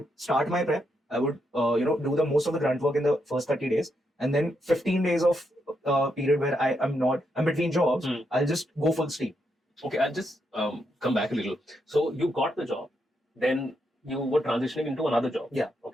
start my prep. I would, do the most of the grunt work in the first 30 days. And then 15 days of period where I'm between jobs, I'll just go full steam. Okay, I'll just come back a little. So you got the job, then you were transitioning into another job. Yeah.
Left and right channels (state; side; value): normal; both; correlation 0.80